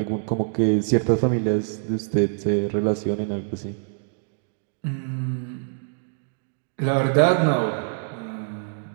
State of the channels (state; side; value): silent; left; digital silence